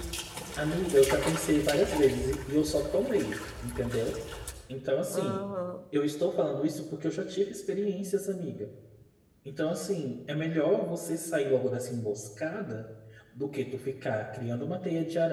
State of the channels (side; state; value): both; identical; correlation 1.00